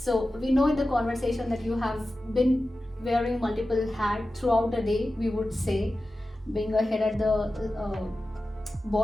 we know in the conversation that you have been wearing multiple hats throughout the day, we would say, being a head at the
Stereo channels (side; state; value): both; normal; correlation 0.94